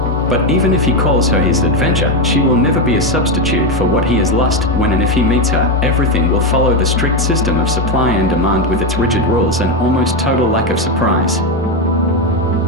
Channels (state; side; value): normal; both; correlation 0.09